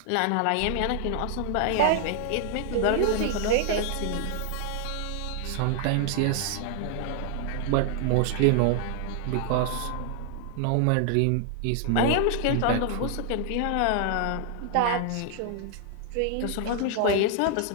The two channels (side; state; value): both; different; correlation 0.00